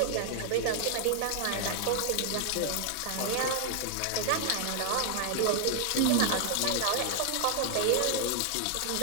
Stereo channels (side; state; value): both; different; correlation 0.00